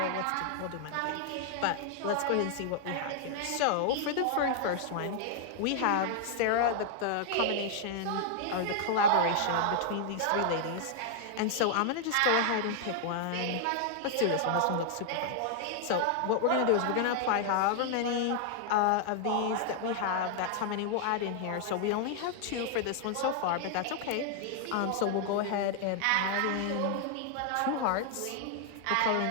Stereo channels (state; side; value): different; both; correlation 0.00